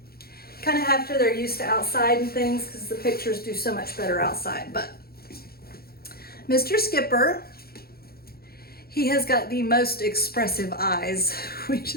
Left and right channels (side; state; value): right; late; 0.44 ms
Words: kind of after they're used to outside and things, because the pictures do so much better outside. But Mr. Skipper, he has got the most expressive eyes.